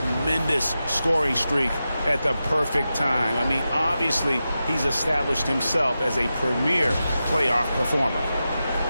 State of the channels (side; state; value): both; inverted; correlation -0.91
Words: scoring streak at the perfect time. I mean, obviously, he's established himself as a premier playoff performer.